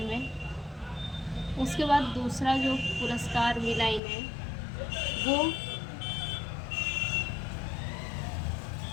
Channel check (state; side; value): drops out; right; at 4.0 s